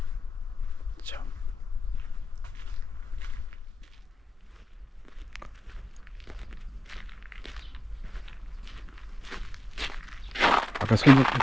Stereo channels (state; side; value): normal; both; correlation 0.96